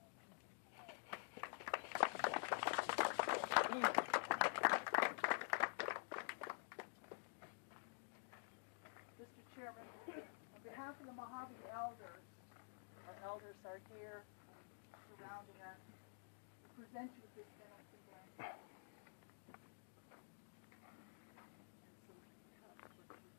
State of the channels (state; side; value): silent; right; digital silence